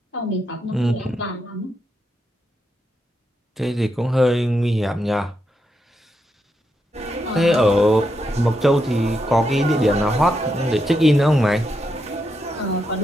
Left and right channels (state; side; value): normal; both; correlation 0.83